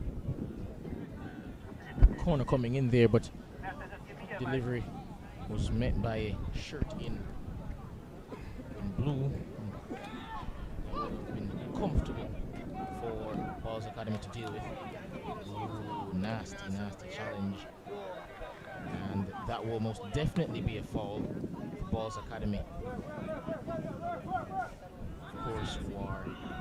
Corner coming in there, but delivery was met by a shirt in blue. That would have been comfortable for Ballaz Academy to deal with. Ooh, nasty challenge. And that will most definitely be a foul for Ballaz Academy. Of course, who are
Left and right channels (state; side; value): identical; both; correlation 1.00